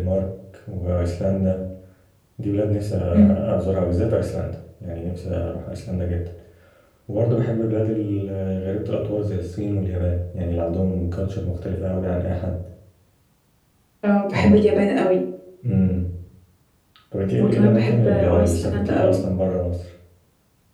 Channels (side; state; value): both; identical; correlation 1.00